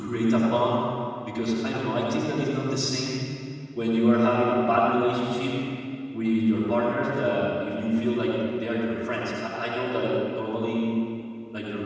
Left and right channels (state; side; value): identical; both; correlation 1.00